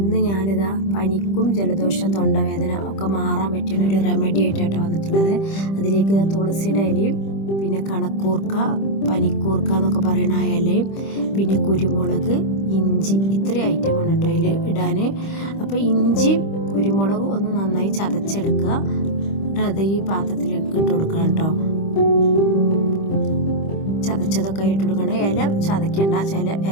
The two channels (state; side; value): late; right; 25 ms